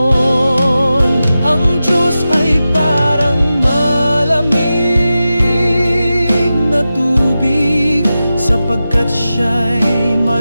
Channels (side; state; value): both; inverted; correlation -0.93